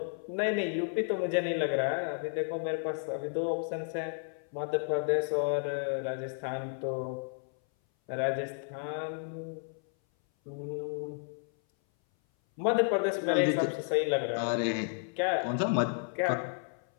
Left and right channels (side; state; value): right; silent; 56 dB below the other